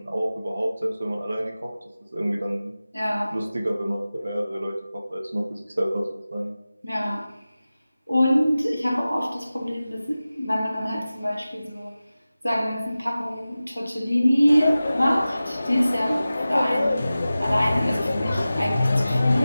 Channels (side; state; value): both; inverted; correlation -0.96